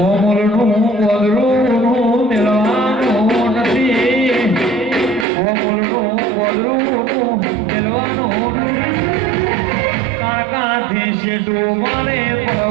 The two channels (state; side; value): drops out; left; at 5.2 s